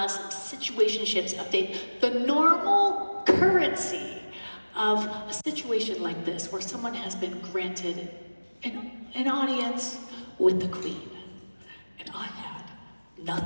some situationships update, the normal currency of a situation like this where someone has been granted an audience with the queen. And I had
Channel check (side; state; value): both; inverted; correlation -1.00